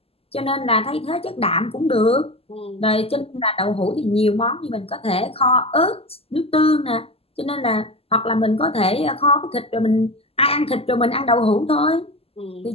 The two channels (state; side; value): late; right; 0.28 ms